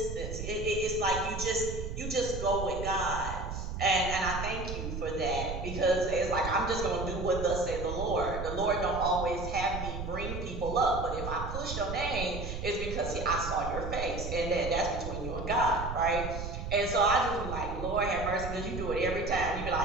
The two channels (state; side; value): noise; right; rumble, 6 dB below the sound